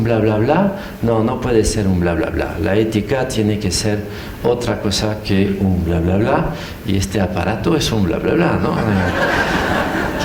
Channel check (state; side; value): identical; both; correlation 1.00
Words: bla, bla, bla. No, no puede ser un bla, bla, bla. La ética tiene que ser otra cosa que un bla, bla, bla. Y este aparato es un bla, bla, bla, ¿no?